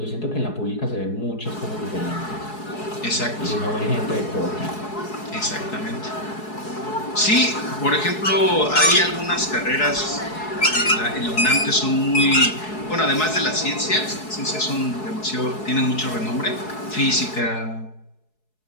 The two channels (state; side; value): late; right; 4.7 ms